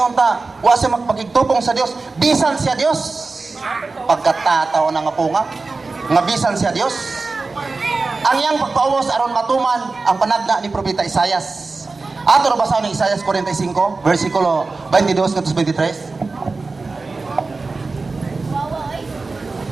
ta, wa siya magpakigtupong sa Dios, bisan siya Dios. Pagkatataw na nga punga, nga bisan siya Dios. Ang iyang pagpaubos aron matuman ang panagna ni Propeta Isaias. Ato na basahin ni Isaias 45, versikulo 22 ngadto 23.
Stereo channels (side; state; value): left; quieter; 3.8 dB